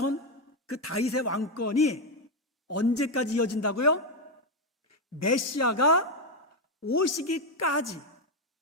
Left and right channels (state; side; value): normal; both; correlation 0.07